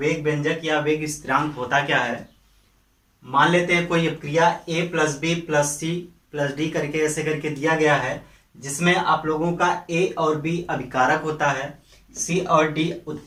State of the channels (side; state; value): both; identical; correlation 1.00